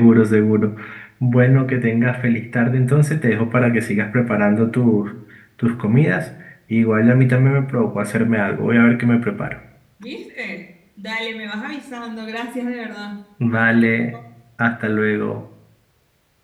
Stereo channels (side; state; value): both; identical; correlation 1.00